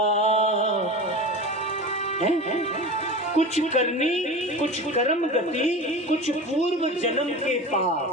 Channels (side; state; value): both; normal; correlation 0.30